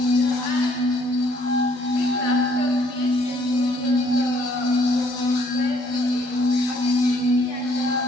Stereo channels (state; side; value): late; left; 12 ms